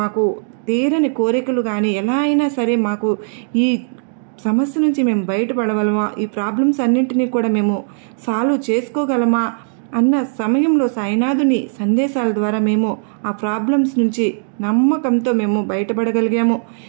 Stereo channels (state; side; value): silent; left; digital silence